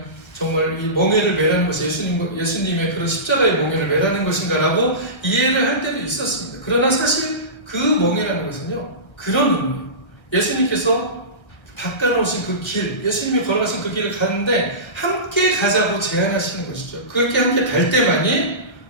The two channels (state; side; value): late; right; 1.6 ms